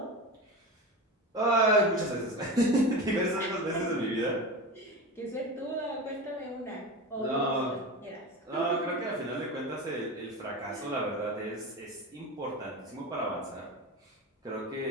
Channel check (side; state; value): both; normal; correlation 0.26